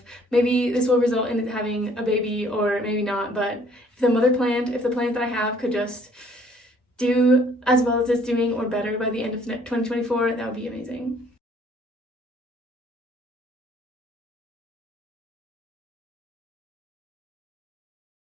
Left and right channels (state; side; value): normal; both; correlation 0.59